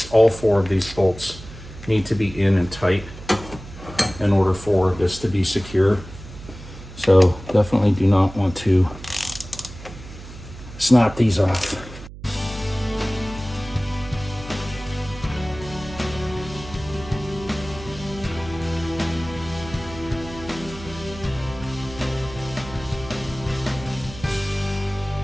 all four of these bolts need to be in and tight in order for this to be secure. So definitely do not want to snap these off.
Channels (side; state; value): right; noise; hum, 15 dB below the sound